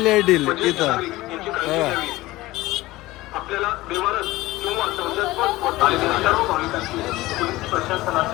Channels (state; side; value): quieter; right; 18.6 dB